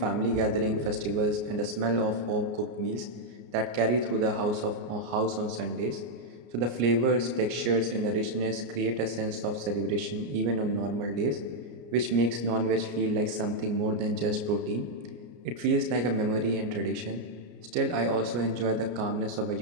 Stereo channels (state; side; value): late; left; 33 ms